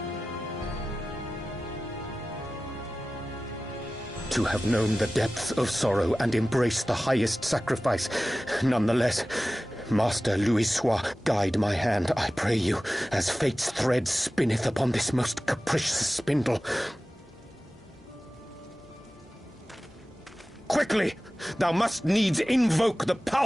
to have known the depths of sorrow and embraced the highest sacrifice. Nonetheless, Master Louis-Sois, guide my hand, I pray you, as fate's thread spinneth upon this most capricious spindle. Quickly! Thou must needs invoke the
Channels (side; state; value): both; normal; correlation 0.96